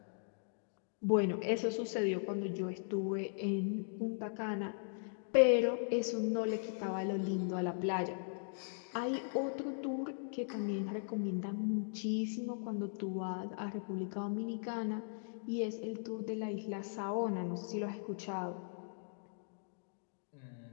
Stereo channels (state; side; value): silent; right; digital silence